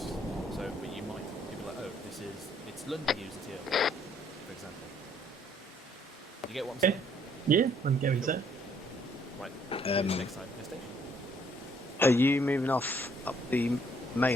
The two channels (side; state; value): both; normal; correlation 0.65